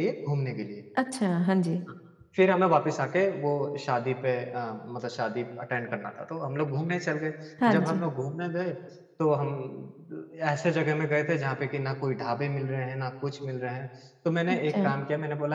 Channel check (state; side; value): identical; both; correlation 1.00